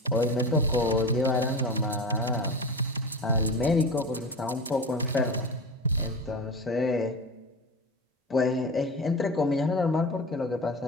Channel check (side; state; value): both; normal; correlation 0.28